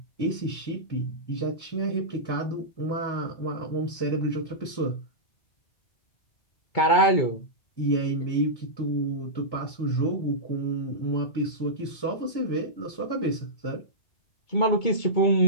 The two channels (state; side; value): late; right; 2.2 ms